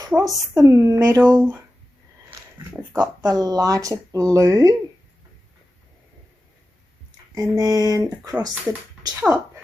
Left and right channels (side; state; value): both; normal; correlation 0.93